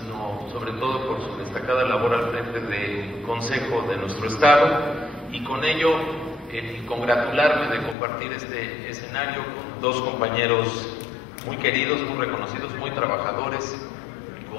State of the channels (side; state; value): right; drops out; at 8.0 s